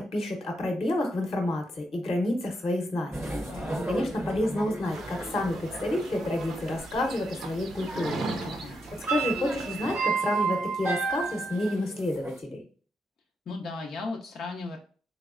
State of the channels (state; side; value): normal; both; correlation 0.81